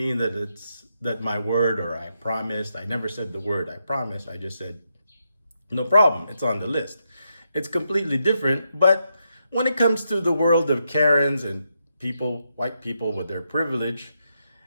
that it's that my word or I promised. I never said the word I promised. I just said, no problem, it's on the list. It's completely different, but when it comes to the world of Karens and people, white people with their privilege,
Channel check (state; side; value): inverted; both; correlation -0.82